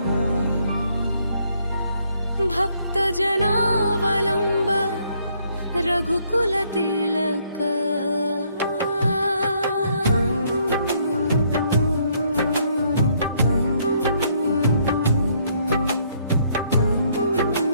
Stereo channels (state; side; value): inverted; both; correlation -0.69